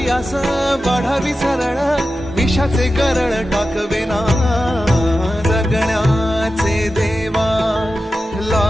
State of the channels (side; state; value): both; normal; correlation 0.92